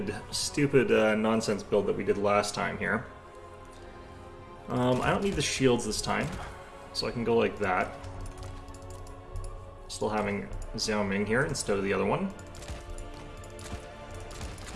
nonsense build that we did last time here. I don't need the shields this time, so I can go like that. Still having Xiao Ming here instead of the other one.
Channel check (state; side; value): identical; both; correlation 1.00